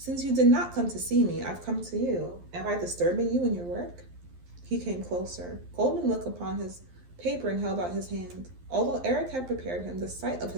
you did not come to see me, I've come to you. Am I disturbing you in your work?" He came closer. Goldmund looked upon his paper and held out his hand. Although Eric had prepared him, the sight of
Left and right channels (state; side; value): late; left; 11 ms